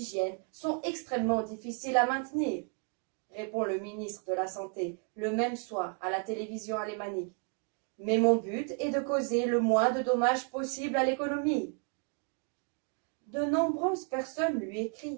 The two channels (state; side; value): quieter; left; 38.4 dB